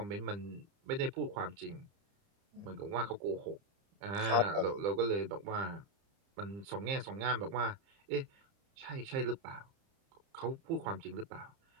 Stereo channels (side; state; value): left; late; 30 ms